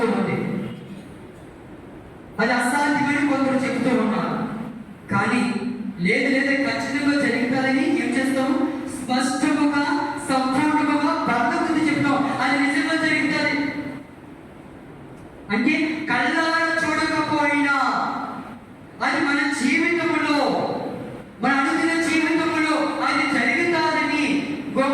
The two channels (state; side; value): identical; both; correlation 1.00